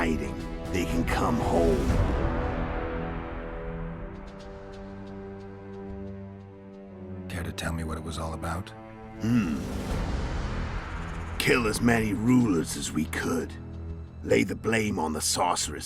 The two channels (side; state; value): both; identical; correlation 1.00